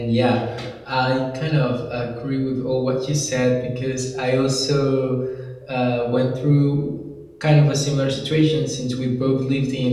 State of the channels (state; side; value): identical; both; correlation 1.00